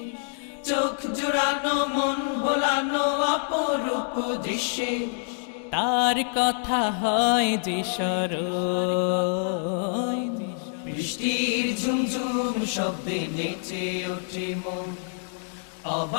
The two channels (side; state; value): right; silent; digital silence